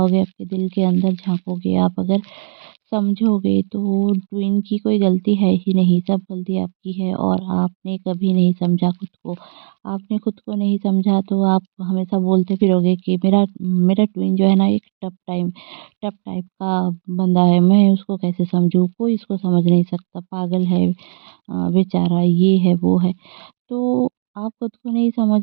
आपके दिल के अंदर झाँकोगे, आप अगर समझोगे, तो ट्विन की कोई गलती है ही नहीं, सब गलती आपकी है और आपने कभी नहीं समझा खुद को। आपने खुद को नहीं समझा, तो आप हमेशा बोलते फिरोगे कि मेरा मेरा ट्विन जो है ना, एक टफ टाइप का बंदा है, मैं उसको कैसे समझूँ? कोई इसको समझ नहीं सकता, पागल है बेचारा, ये है, वो है। तो आप खुद को नहीं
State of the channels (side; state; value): left; silent; digital silence